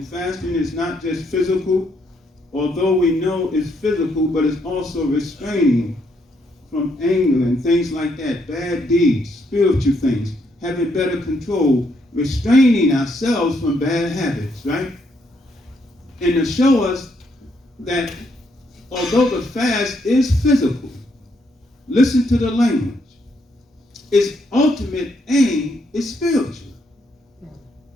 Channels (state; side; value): normal; both; correlation 0.74